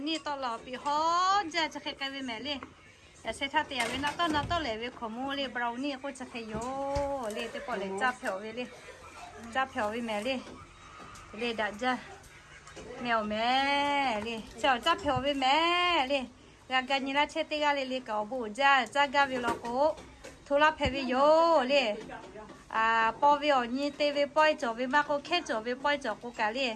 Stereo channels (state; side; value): identical; both; correlation 1.00